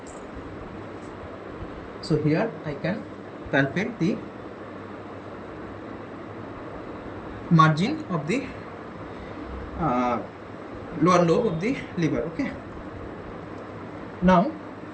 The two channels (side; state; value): both; identical; correlation 1.00